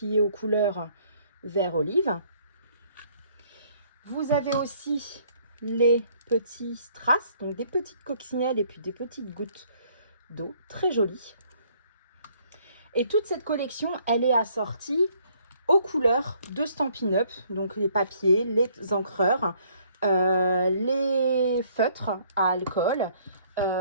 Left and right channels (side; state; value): both; inverted; correlation -0.63